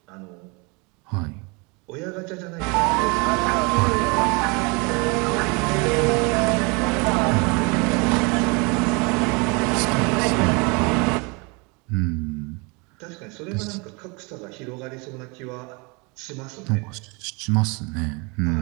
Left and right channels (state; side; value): quieter; left; 29.7 dB